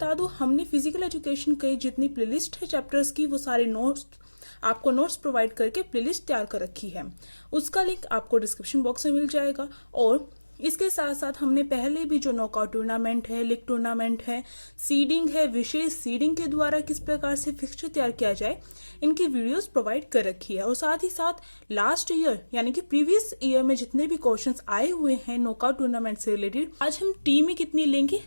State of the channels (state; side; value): inverted; both; correlation -1.00